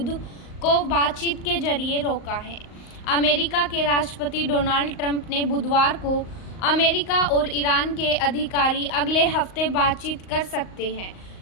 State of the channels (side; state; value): right; late; 38 ms